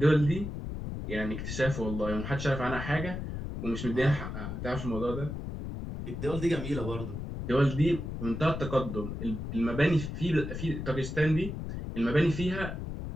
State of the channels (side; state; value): left; noise; rumble, 6 dB below the sound